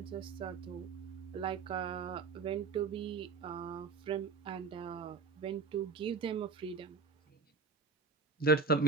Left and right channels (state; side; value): quieter; left; 4.7 dB